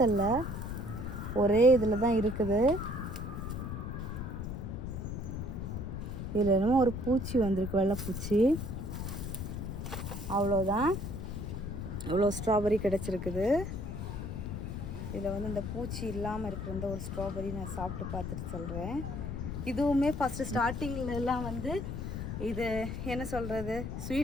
ஒரே இதில் தான் இருக்குது. இதில் என்னமோ ஒரு பூச்சி வந்திருக்கு, வெள்ளைப்பூச்சி. அவ்வளோதான், இவ்வளோ ஸ்ட்ராபெரி கிடச்சிருக்குது. இதில் வந்து இந்த பூச்சி இல்லாமல் இருக்கிற இந்த ஒரு ஸ்ட்ராபெரி நான் சாப்பிட்டு பார்த்துட்டு சொல்கிறேன். இதுவுமே ஃபஸ்ட்டு ஸ்டார்டிங்லலாம் வந்து இது என்ன சொல்கிறது,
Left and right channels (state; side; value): noise; left; rumble, 5 dB below the sound